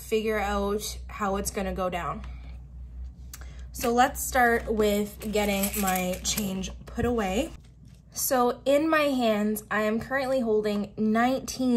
out how it's gonna go down. So let's start with getting my change put away. So in my hands, I am currently holding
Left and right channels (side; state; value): both; identical; correlation 1.00